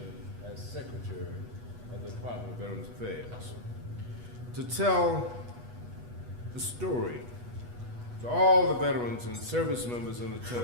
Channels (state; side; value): late; left; 8.2 ms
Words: as Secretary of the Department of Veterans Affairs. To tell the story to all the veterans and service members in